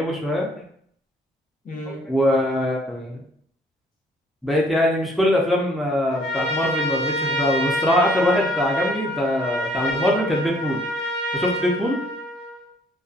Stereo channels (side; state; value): both; normal; correlation 0.61